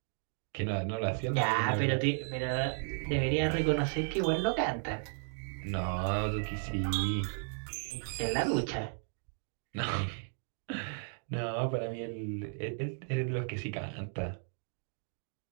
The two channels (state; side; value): silent; left; 55 dB below the other